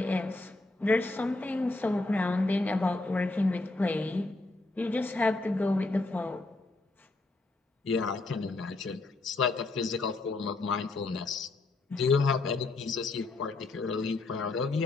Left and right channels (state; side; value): quieter; right; 3.2 dB